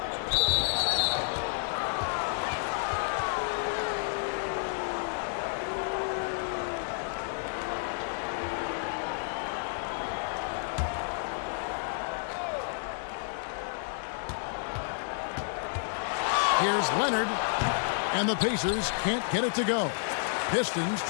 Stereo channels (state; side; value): silent; right; 57 dB below the other